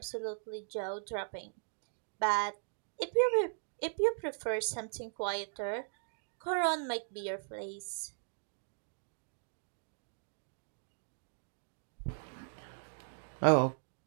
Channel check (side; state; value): left; silent; digital silence